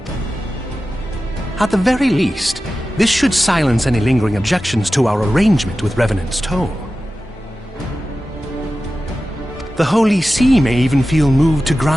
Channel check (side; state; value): both; normal; correlation 0.94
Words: At the very least, this should silence any lingering objections to our arrangement with Revenant's Toll. The Holy See may even feel moved to